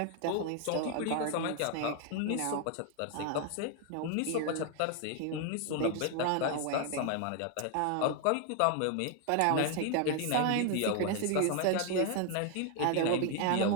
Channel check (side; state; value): both; different; correlation 0.01